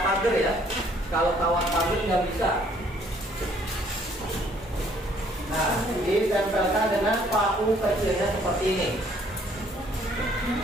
pagar ya. Kalau kawat pagar nggak bisa. Nah, ditempelkan dengan paku kecilnya seperti ini.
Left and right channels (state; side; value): normal; both; correlation 0.62